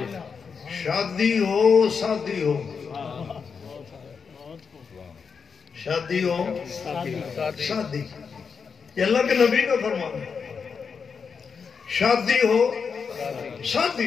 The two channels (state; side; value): quieter; right; 5.8 dB